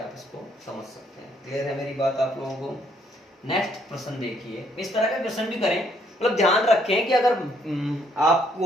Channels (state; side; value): normal; both; correlation 0.69